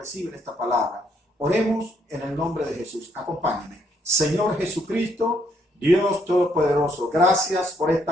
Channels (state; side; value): normal; both; correlation 0.71